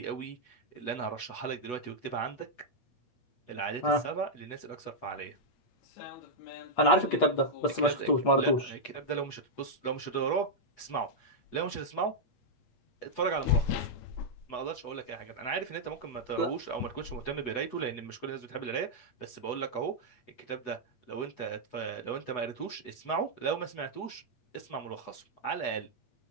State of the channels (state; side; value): late; right; 8.1 ms